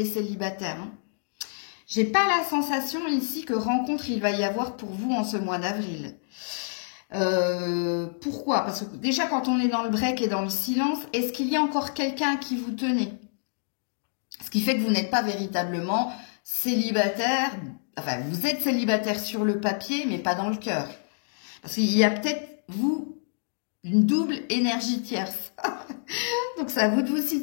célibataires, hein. J'ai pas la sensation ici que rencontre il va y avoir pour vous en ce mois d'avril. Pourquoi? Parce que déjà quand on est dans le break et dans le silence, est-ce qu'il y a encore quelqu'un à qui vous tenez? Ce qui fait que vous n'êtes pas véritablement célibataire, enfin vous êtes célibataire sur le papier mais pas dans le cœur. Parce qu'il y a peut-être vous une double énergie tierce. Donc c'est à vous de vous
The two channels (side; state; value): right; silent; digital silence